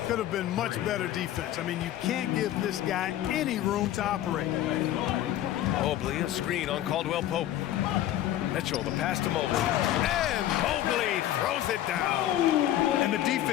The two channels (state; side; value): quieter; right; 12.9 dB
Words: Could have been much better defense. I mean, you can't give this guy any room to operate. Mobley, a screen on Caldwell Pope. Mitchell, the pass to Mobley. And Mobley throws it down. And the